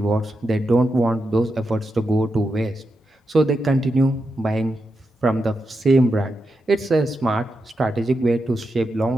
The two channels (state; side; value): normal; both; correlation 0.87